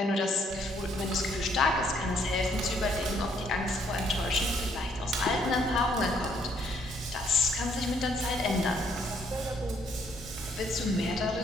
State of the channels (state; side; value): normal; both; correlation 0.68